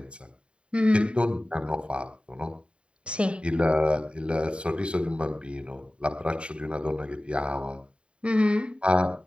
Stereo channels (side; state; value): left; late; 0.056 ms